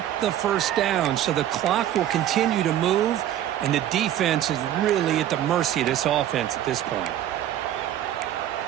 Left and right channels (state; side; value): quieter; left; 11.8 dB